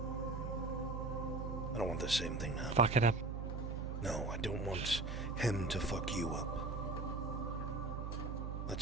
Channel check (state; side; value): noise; right; hum, 4 dB below the sound